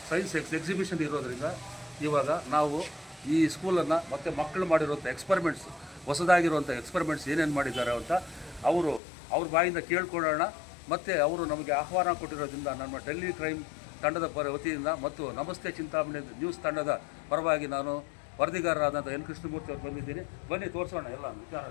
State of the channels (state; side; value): drops out; right; at 9.0 s